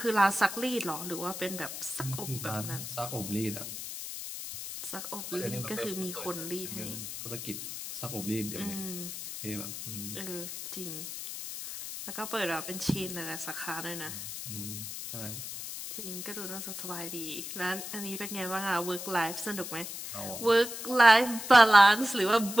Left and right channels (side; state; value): left; noise; hiss, 8 dB below the sound